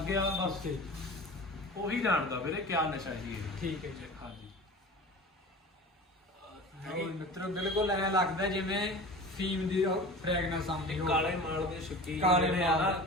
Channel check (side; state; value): both; normal; correlation 0.36